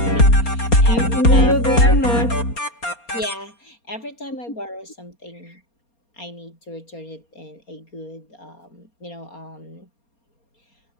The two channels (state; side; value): late; right; 4.3 ms